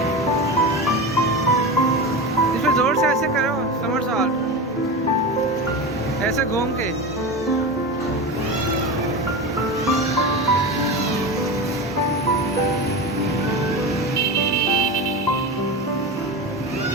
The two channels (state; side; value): normal; both; correlation 0.24